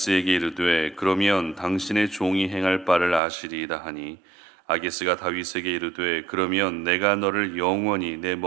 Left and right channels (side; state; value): left; drops out; at 3.2 s